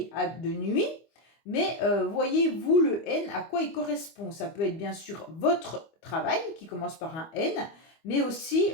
de nuit, mais voyez-vous le N, à quoi il correspond? Ça peut être bien sûr votre travail qui commence par un N, mais aussi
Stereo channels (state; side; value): late; right; 25 ms